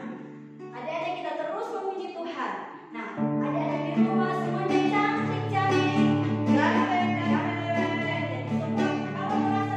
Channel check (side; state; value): both; identical; correlation 1.00